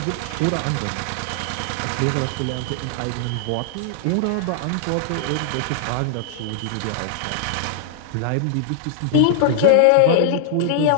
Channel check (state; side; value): different; both; correlation -0.01